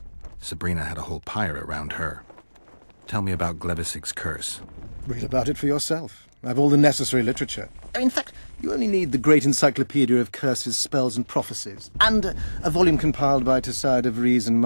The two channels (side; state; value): both; inverted; correlation -1.00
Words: Sabrina had a whole pyre around her. Tell me about Glevis's curse. Read about it for yourself. I've all the necessary literature. In fact, you only need the Great Encyclopedia of Curses, Spells and Prophecies, and a volume compiled by Tessard de Vries and